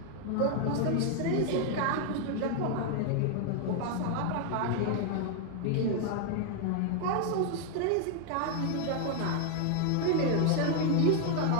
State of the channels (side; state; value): both; different; correlation 0.00